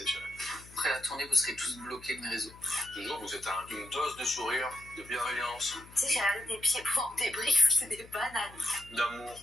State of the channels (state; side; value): noise; left; hum, 20 dB below the sound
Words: Après la tournée, vous serez tous bloqués de mes réseaux. Toujours, vous êtes une dose de sourire, de bienveillance, Tu sais, j'ai regardé tes pieds pour en débrief, c'est des bananes. d'amour,